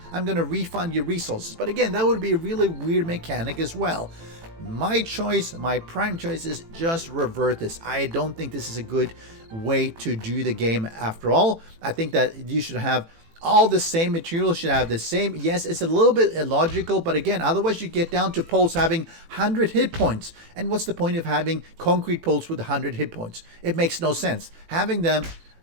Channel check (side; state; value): left; late; 18 ms